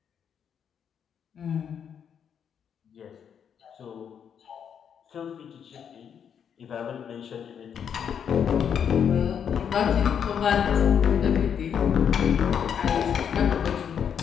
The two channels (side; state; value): right; quieter; 7.9 dB